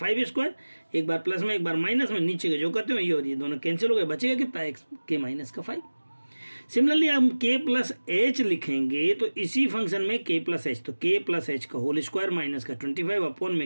स्क्वायर, एक बार प्लस में एक बार माइनस में, नीचे के जो करते हो ये और ये दोनों कैंसिल हो गए, बचेगा कितना, एक्स के माइनस का 5। सिमिलरली हम k प्लस एच लिखेंगे तो इसी फंक्शन में k प्लस एच, तो k प्लस एच का होल स्क्वायर माइनस का 25 अपॉन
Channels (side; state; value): both; inverted; correlation -1.00